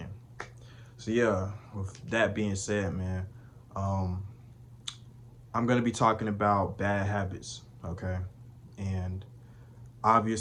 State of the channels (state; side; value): identical; both; correlation 1.00